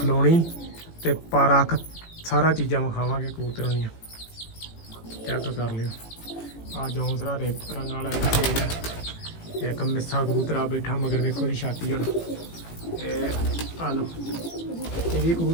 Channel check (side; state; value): right; late; 18 ms